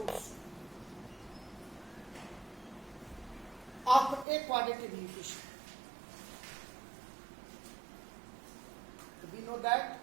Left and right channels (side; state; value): left; drops out; at 4.2 s